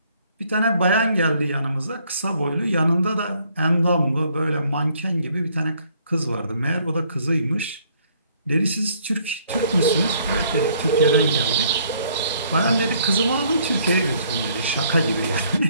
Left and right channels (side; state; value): both; inverted; correlation -0.64